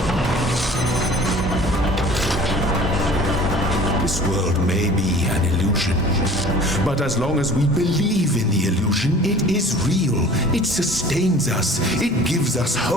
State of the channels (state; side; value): normal; both; correlation 0.46